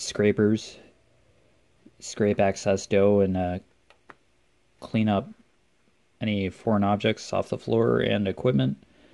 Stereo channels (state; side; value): identical; both; correlation 1.00